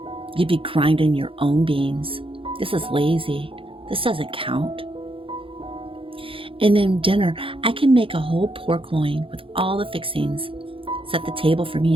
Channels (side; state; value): left; late; 0.26 ms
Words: you'd be grinding your own beans. This is lazy. This doesn't count. And then dinner, I can make a whole pork loin with all the fixings, set the table for me